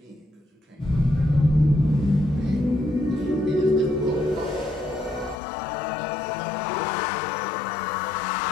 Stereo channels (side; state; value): right; drops out; at 5.4 s